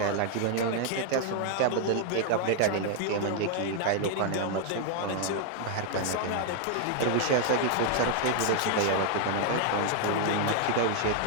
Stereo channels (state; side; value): different; both; correlation 0.00